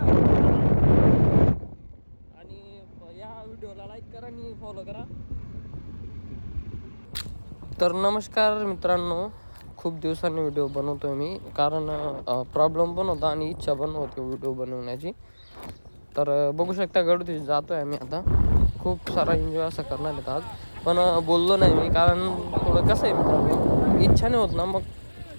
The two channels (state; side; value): inverted; both; correlation -1.00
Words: आणि या व्हिडिओला लाईक करा आणि फॉलो करा. तर नमस्कार मित्रांनो, खूप दिवसांनी व्हिडिओ बनवतोय मी कारण प्रॉब्लेम पण होता आणि इच्छा पण होती व्हिडिओ बनवण्याची. तर बघू शकता गडवरती जातोय आम्ही आता. खूप सारा एन्जॉय असं करणार आहेत आज, पण बोललो नाही मी कारण थोडं कसं आहे मित्रांनो, इच्छा नाही होत ना मग